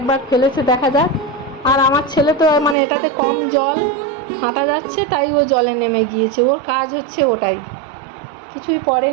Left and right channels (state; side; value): drops out; left; at 2.8 s